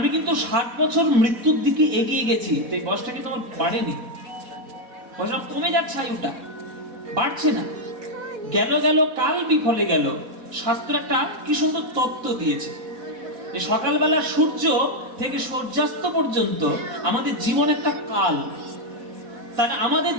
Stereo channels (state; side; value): late; left; 4.1 ms